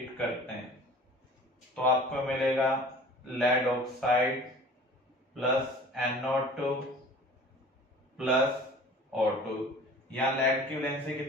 करते हैं तो आपको मिलेगा lead oxide plus NO2 plus O2। यहां लेड की वैलेंसी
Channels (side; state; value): both; normal; correlation 0.45